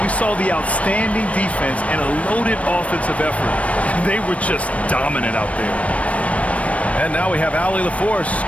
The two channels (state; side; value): late; right; 0.065 ms